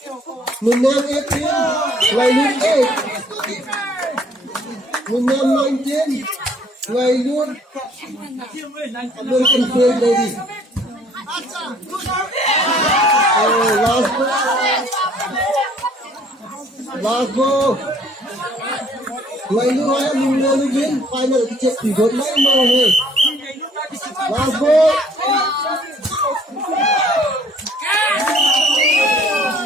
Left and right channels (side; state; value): both; normal; correlation 0.59